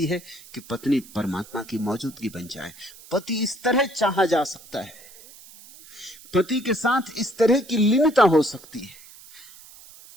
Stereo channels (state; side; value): noise; right; hiss, 20 dB below the sound